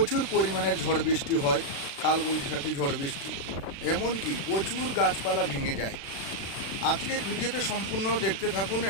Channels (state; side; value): late; right; 36 ms